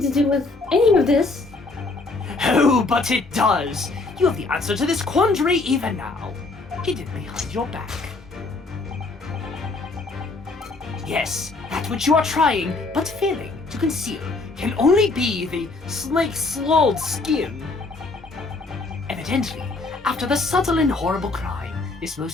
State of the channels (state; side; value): quieter; right; 3.5 dB